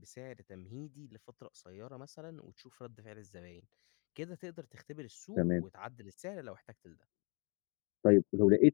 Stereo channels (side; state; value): right; quieter; 33.2 dB